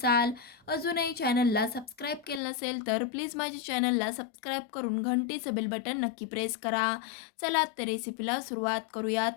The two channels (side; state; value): right; drops out; at 2.4 s